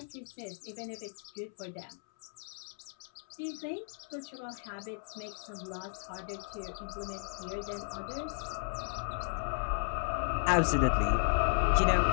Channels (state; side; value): silent; right; 55 dB below the other